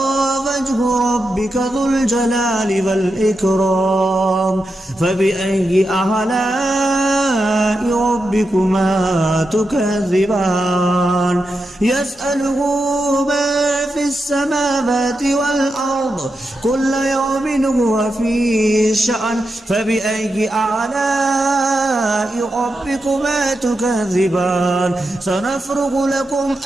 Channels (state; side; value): normal; both; correlation 0.87